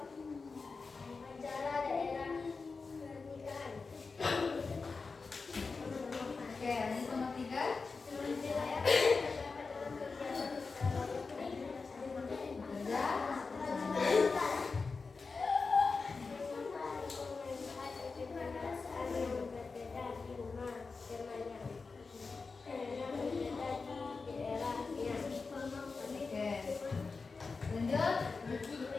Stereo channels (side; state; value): right; quieter; 4.4 dB